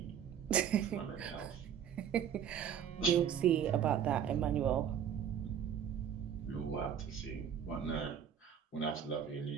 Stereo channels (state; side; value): quieter; left; 8.6 dB